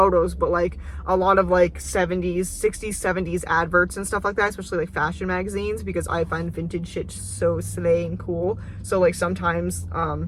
but like a lot of like 60s, 70s adverts and stuff like that, especially like fashion magazines, because I find vintage shit so slay and cool. So like sometimes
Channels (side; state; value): both; identical; correlation 1.00